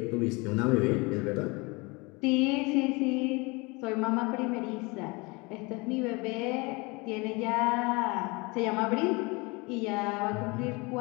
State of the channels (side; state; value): right; quieter; 26.5 dB